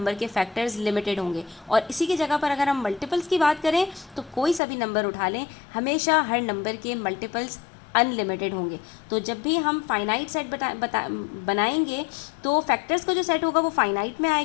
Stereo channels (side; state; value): right; drops out; at 4.6 s